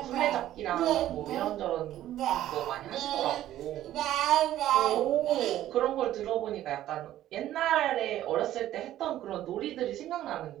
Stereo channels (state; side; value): quieter; left; 13.1 dB